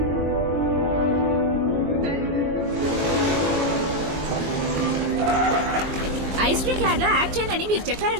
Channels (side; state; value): left; late; 21 ms